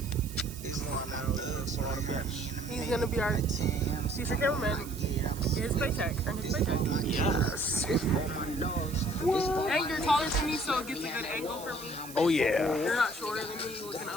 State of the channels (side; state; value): right; noise; hiss, 15 dB below the sound